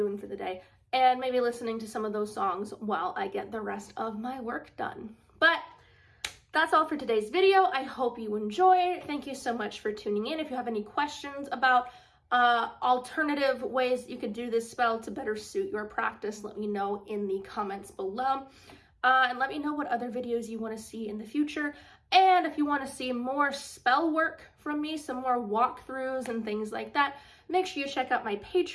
for the day, and maybe listening to some of those songs while I get the rest of my work done. But that's all for today's video. I hope you enjoyed. Thank you so much for tuning in. If you have any questions about alternative ways you could do this spell to better suit your practice, let me know in the comments below. And let me know what other videos you want to see in the future. And if you want to see more spell work from me, some more walkthroughs and things like that, make sure you check out my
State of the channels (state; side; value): identical; both; correlation 1.00